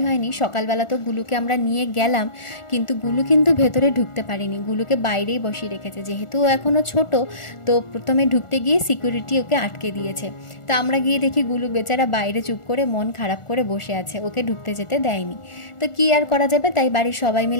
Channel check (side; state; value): right; late; 1.4 ms